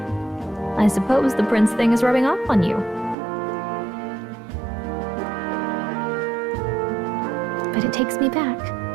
I suppose the prince thing is rubbing off on you. But it takes me back.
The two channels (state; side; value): drops out; left; at 3.2 s